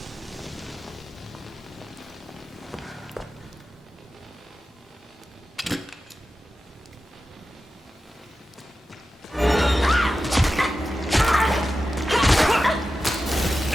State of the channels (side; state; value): both; normal; correlation 0.92